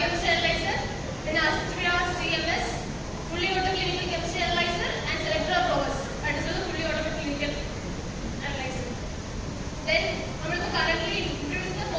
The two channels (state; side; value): identical; both; correlation 1.00